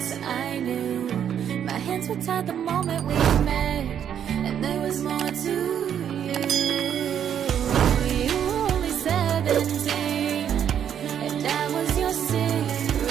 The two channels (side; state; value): left; quieter; 9.1 dB